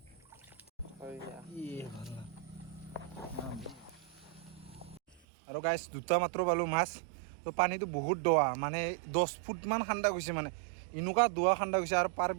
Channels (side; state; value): left; drops out; at 5.2 s